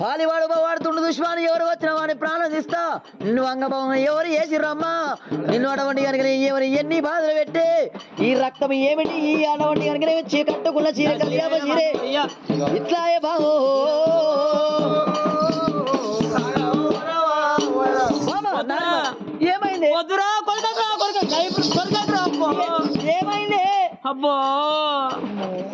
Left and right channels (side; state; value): both; identical; correlation 1.00